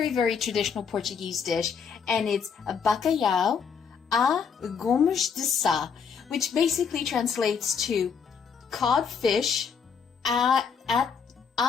very traditional Portuguese dish. And it's a bacalhau a Gomes de Sá, which basically translates to cod fish a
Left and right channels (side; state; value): right; quieter; 6.4 dB